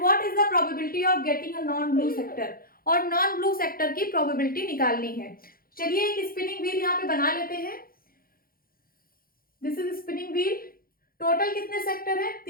what is the probability of getting a non blue sector. और non blue sector की probability निकालनी है. चलिए एक स्पिनिंग व्हील यहाँ पे बना लेते हैं. This is spinning wheel. Total कितने सेक्टर है,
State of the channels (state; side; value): late; right; 0.42 ms